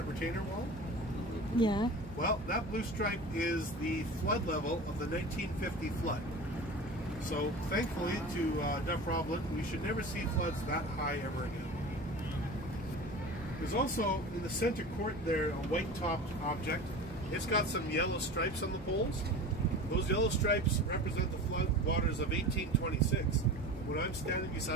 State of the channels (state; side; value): normal; both; correlation 0.34